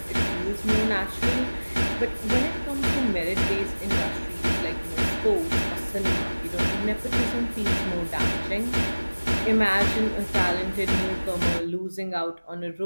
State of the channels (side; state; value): both; inverted; correlation -1.00